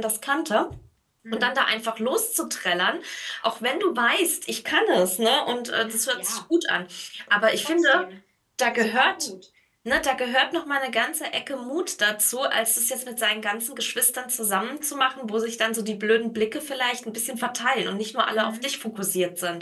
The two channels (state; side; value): identical; both; correlation 1.00